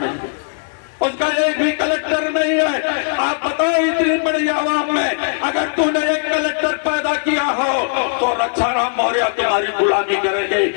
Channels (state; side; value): silent; right; digital silence